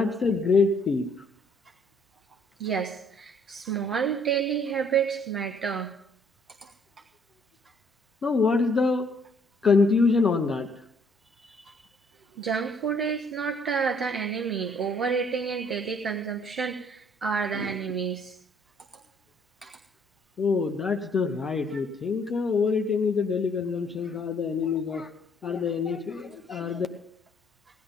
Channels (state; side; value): normal; both; correlation 0.64